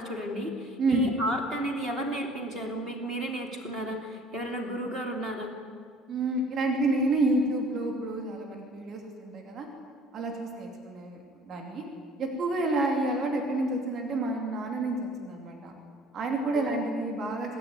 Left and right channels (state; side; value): normal; both; correlation 0.52